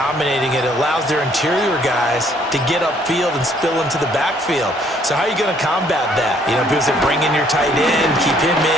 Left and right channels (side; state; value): both; normal; correlation 0.64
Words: it. It allows their interior guys to get upfield and spill into the backfield. So how are you going to combat that? You know, people say bring in your tight end, keep him